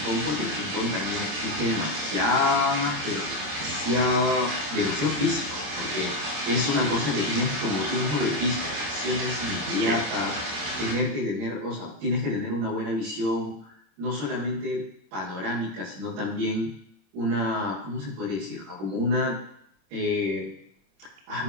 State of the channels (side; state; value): left; late; 27 ms